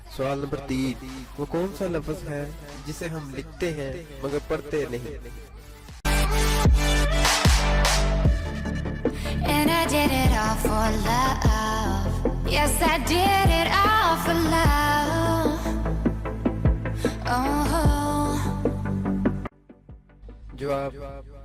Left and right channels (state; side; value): identical; both; correlation 1.00